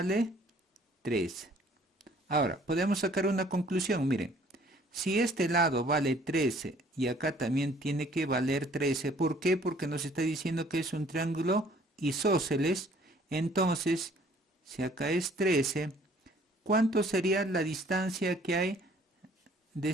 13. Ahora, podemos sacar una conclusión. Miren, si este lado vale 13 y acá también tiene que valer 13, ¿por qué? Porque nos está diciendo que es un triángulo isósceles. Entonces, si acá es 13, ¿cuánto sería la distancia que hay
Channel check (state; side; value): normal; both; correlation 0.57